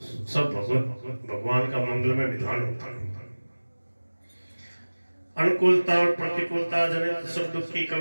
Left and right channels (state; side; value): inverted; both; correlation -1.00